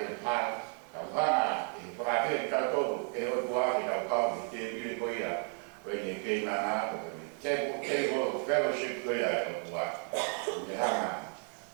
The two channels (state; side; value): quieter; left; 38.7 dB